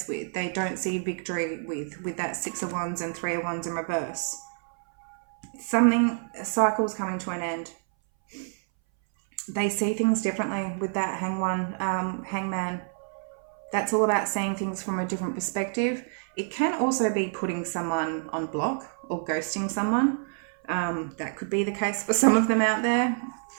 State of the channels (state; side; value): silent; left; 60 dB below the other